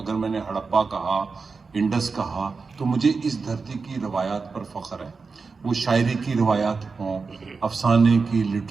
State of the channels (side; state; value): left; quieter; 4.6 dB